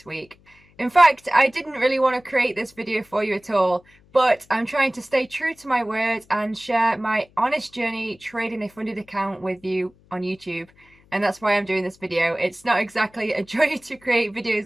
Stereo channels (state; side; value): noise; left; hum, 30 dB below the sound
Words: week. In fact, I didn't really want to create this video for you at all, but I'm trying to stay true to my word and share my honest journey trading a funded account with you on YouTube. And that's why I'm doing this video. It's not exactly a joy to create